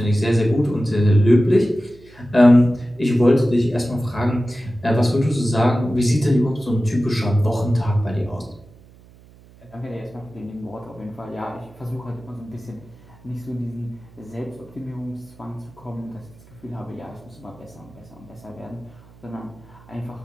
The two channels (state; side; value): noise; right; hum, 25 dB below the sound